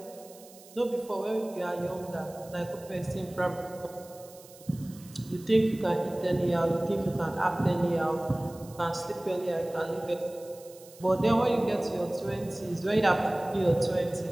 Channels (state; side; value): noise; right; hiss, 22 dB below the sound